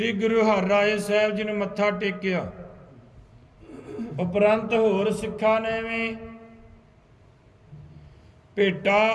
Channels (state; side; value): identical; both; correlation 1.00